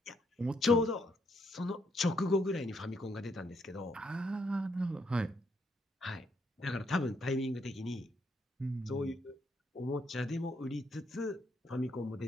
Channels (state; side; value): normal; both; correlation 0.74